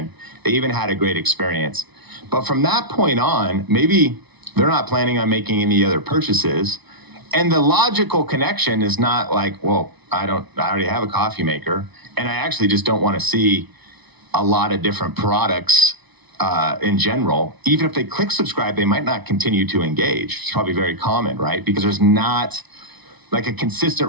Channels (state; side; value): late; left; 0.99 ms